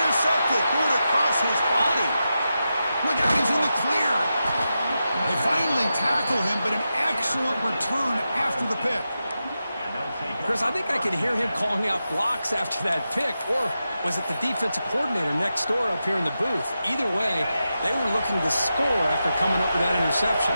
Threw it across his body. Look out, he's in the clear. They finally tackle him, but an excellent return after the pick. Chris, I think I could hear him calling out blocks after that pick, or was it the defensive coordinator next door up here in the booth? Either way, they were looking to score after coming up with that interception.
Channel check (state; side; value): inverted; both; correlation -0.90